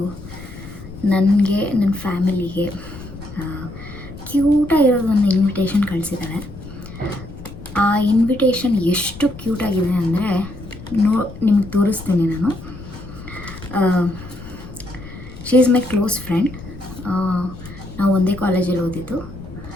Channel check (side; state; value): left; noise; rumble, 14 dB below the sound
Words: ನನಗೆ ನನ್ನ ಫ್ಯಾಮಿಲಿಗೆ ಕ್ಯೂಟಾಗಿರೋದು ಒಂದು ಇನ್ವಿಟೇಷನ್ ಕಳಿಸಿದ್ದಾಳೆ. ಆ ಇನ್ವಿಟೇಷನ್ ಎಷ್ಟು ಕ್ಯೂಟಾಗಿದೆ ಅಂದರೆ ನಿಮ್ಗೆ ತೋರಿಸ್ತೀನಿ ನಾನು. She is my close friend. ನಾವು ಒಂದೇ ಕಾಲೇಜಲ್ಲಿ ಓದಿದ್ದು.